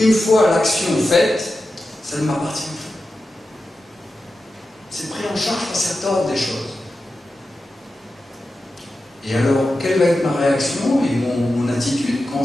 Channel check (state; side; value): normal; both; correlation 0.92